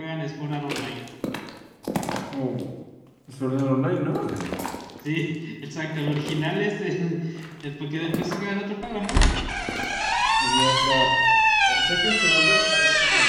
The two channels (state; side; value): identical; both; correlation 1.00